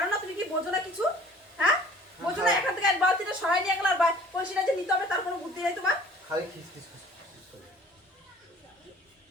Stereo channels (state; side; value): normal; both; correlation 0.50